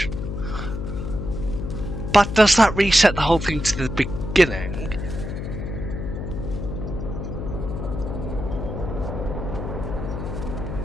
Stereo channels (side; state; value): left; noise; hum, 5 dB below the sound